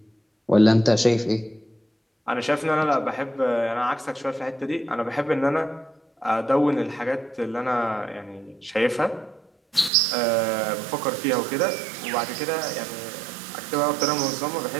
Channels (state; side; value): drops out; left; at 9.9 s